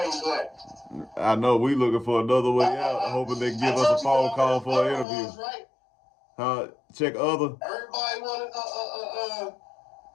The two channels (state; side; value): drops out; right; at 5.1 s